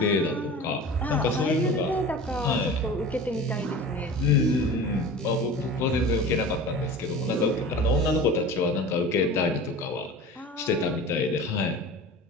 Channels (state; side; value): normal; both; correlation 0.37